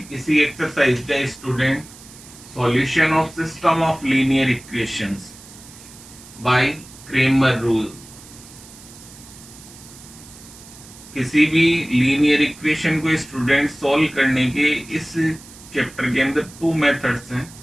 इसी एक्सरसाइज का student, solution of system of linear equations by Cramer rule. किसी भी लीनियर इक्वेशन को स्टूडेंट सॉल्व करने के इस चैप्टर के अंदर टू मेथड्स हैं।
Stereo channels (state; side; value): noise; right; hiss, 19 dB below the sound